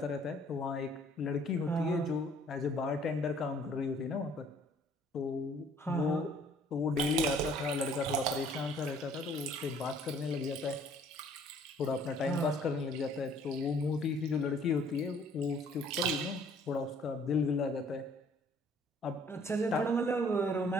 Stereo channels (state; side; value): normal; both; correlation 0.58